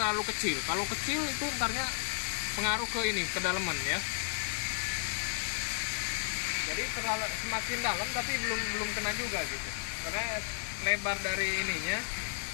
kecil. Kalau kecil itu ntarnya pengaruh ke ini, kedalaman ya. Jadi semakin dalam tapi belum kena juga gitu, karena lebar dari ininya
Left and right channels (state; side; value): silent; right; digital silence